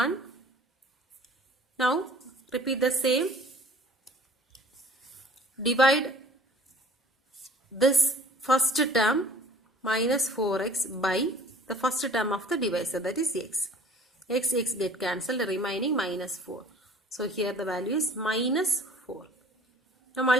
Now repeat the same. Divide this first term minus 4x by the first term of the divisor, that is x. X get cancelled, remaining minus 4. So here the value is minus 4. Now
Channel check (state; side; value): normal; both; correlation 0.49